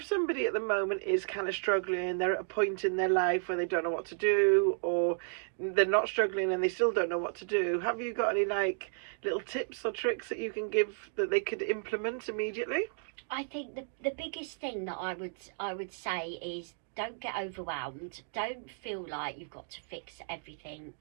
somebody at the moment is kind of struggling, they're at a point in their life where they don't know what to do, or they're not struggling and they still don't know what to do, have you got any like little tips or tricks that you can give that they could implement immediately? I think the biggest thing that I would say is, don't get overwhelmed. Don't feel like you've got to fix everything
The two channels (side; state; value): left; silent; digital silence